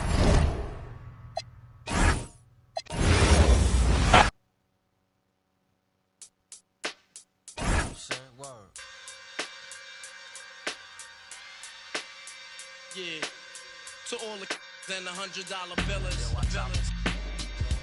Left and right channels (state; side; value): identical; both; correlation 1.00